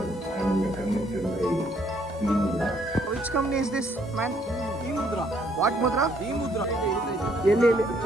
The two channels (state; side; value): normal; both; correlation 0.67